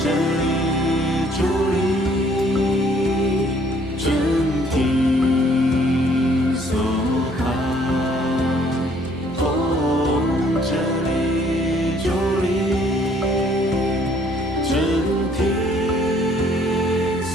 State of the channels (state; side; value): normal; both; correlation 0.61